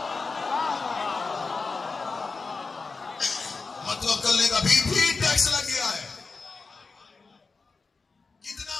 मुतवक्किल ने अभी भी टैक्स लग गया है। कितना?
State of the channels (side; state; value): right; quieter; 4.3 dB